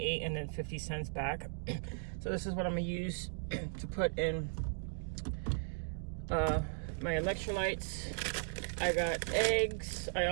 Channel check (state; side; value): silent; left; digital silence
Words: and then 50 cents back. So this is what I'm gonna use to put in my electrolytes. I got eggs. I